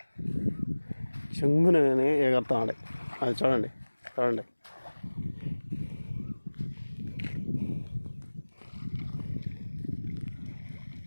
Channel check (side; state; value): both; inverted; correlation -1.00